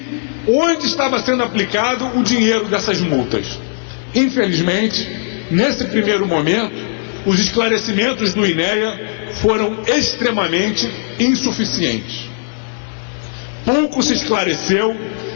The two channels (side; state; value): right; silent; digital silence